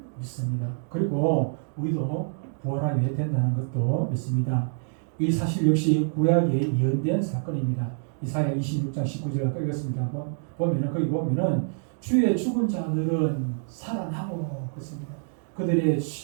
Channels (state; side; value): silent; left; digital silence